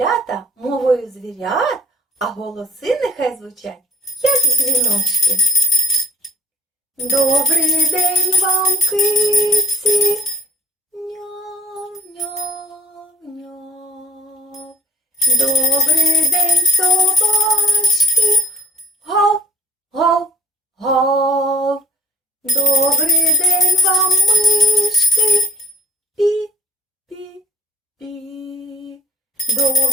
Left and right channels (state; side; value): normal; both; correlation 0.61